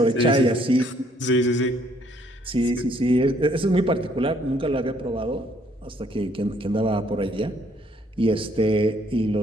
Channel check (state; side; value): normal; both; correlation 0.65